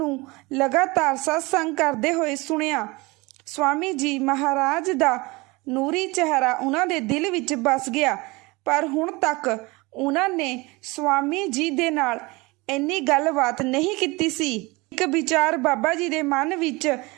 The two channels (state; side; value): quieter; left; 24.2 dB